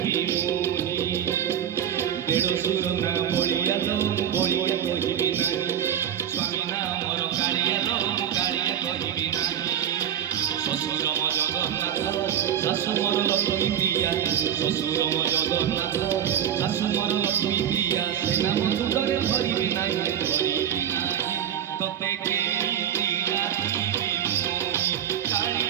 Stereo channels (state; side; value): quieter; left; 9.6 dB